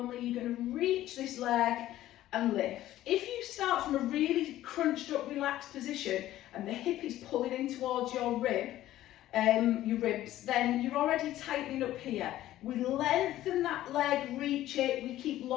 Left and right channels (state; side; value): quieter; right; 14.1 dB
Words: You're going to reach this leg and lift. If you start from a really crunched up, relaxed position and the hip is pulling in towards your ribs, then you're already tightening up here. We lengthen that leg, reach it, we keep